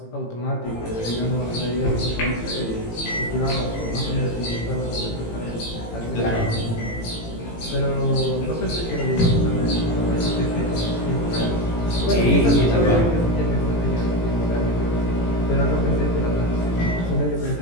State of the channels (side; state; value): right; late; 18 ms